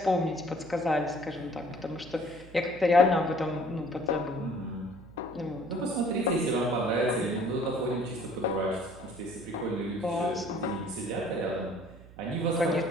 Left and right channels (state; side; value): noise; right; hum, 20 dB below the sound